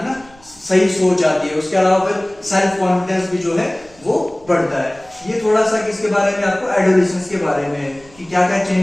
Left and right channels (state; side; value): noise; right; rumble, 26 dB below the sound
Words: ना, सही सोच आती है। उसके अलावा फिर सेल्फ कॉन्फिडेंस भी जो है वो बढ़ता है। ये थोड़ा सा किसके बारे में, आपको एडोलेसेंस के बारे में है कि क्या क्या